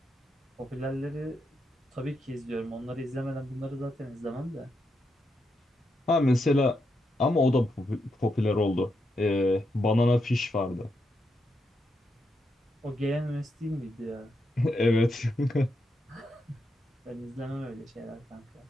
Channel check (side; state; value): both; normal; correlation 0.83